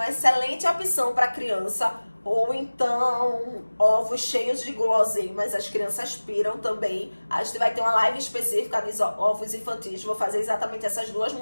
excelente opção para criança. Ou então ovos cheios de guloseimas, as crianças piram também. A gente vai ter uma live específica de ovos infantis. Vou fazer exatamente essas duas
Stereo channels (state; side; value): inverted; both; correlation -1.00